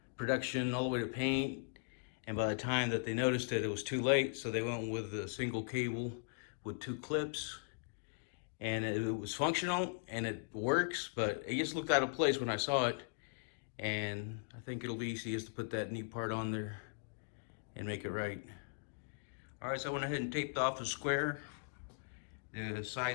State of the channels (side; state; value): right; silent; digital silence